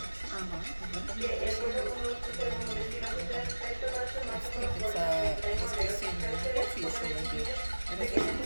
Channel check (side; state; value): both; inverted; correlation -1.00